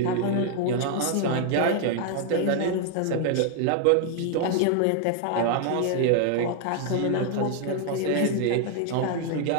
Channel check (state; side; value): different; both; correlation 0.00